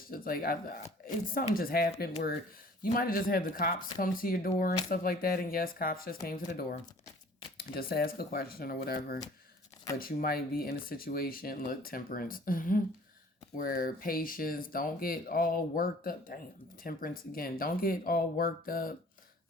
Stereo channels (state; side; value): normal; both; correlation 0.50